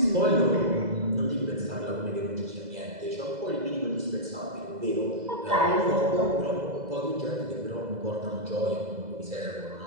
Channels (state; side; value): late; left; 2.0 ms